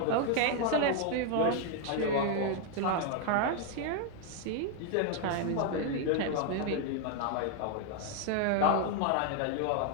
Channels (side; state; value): both; different; correlation 0.00